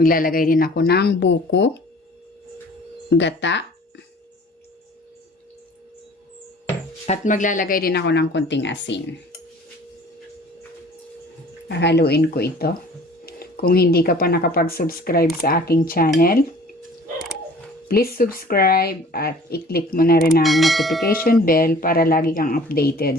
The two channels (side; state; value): both; normal; correlation 0.49